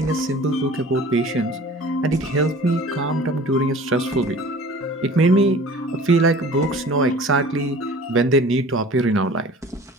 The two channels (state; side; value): normal; both; correlation 0.44